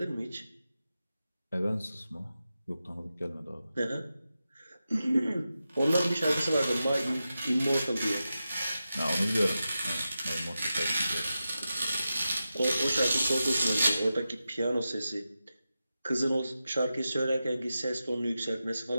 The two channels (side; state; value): both; inverted; correlation -0.91